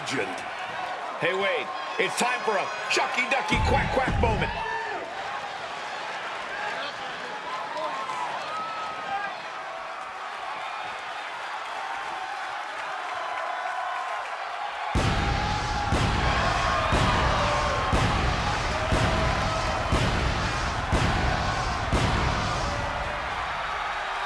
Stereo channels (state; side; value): identical; both; correlation 1.00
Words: Hey, Wade, it's time for a Chucky Ducky Quack Quack moment.